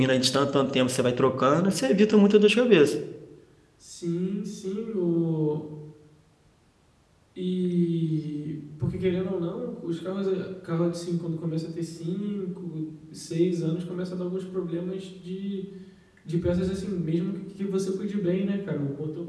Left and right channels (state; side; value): identical; both; correlation 1.00